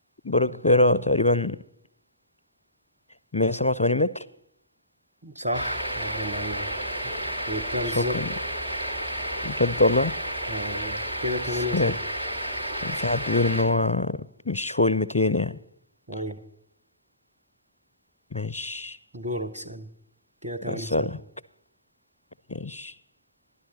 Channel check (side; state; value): both; inverted; correlation -0.40